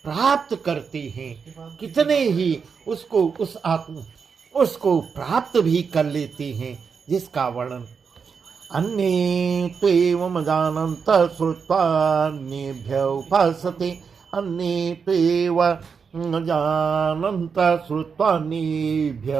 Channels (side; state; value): left; quieter; 5.9 dB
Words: प्राप्त करते हैं। कितने ही उसको प्राप्त भी कर लेते हैं, जिसका वर्णन अन्ये त्वेवं जानन्तः श्रुत्वान्येभ्य उपासते, अन्ये त्वेवं जानन्तः श्रुत्वान्येभ्य